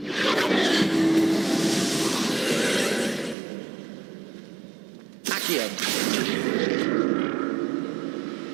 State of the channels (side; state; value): left; drops out; at 3.4 s